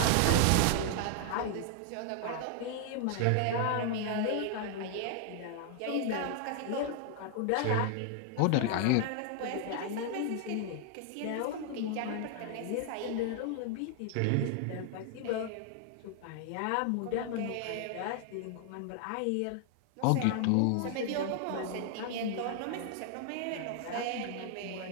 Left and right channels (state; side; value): different; both; correlation 0.00